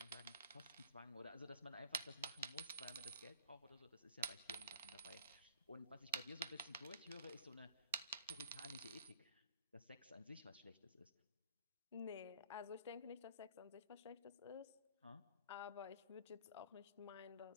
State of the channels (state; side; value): inverted; both; correlation -0.53